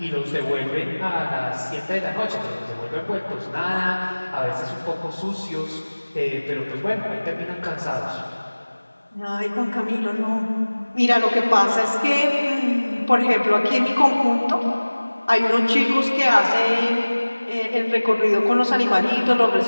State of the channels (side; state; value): both; inverted; correlation -1.00